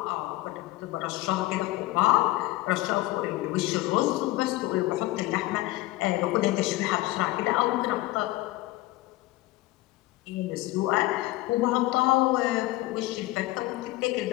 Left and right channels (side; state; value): right; quieter; 18.4 dB